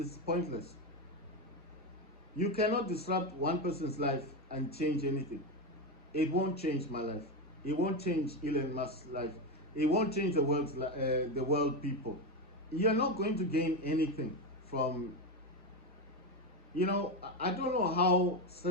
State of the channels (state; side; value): normal; both; correlation 0.13